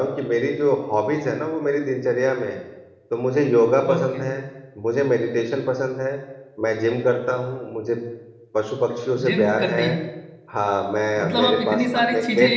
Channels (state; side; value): identical; both; correlation 1.00